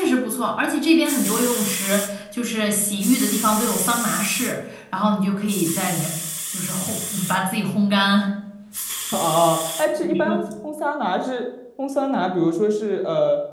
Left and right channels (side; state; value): both; identical; correlation 1.00